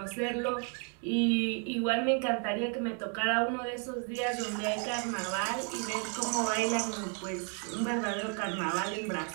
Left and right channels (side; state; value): left; quieter; 39.8 dB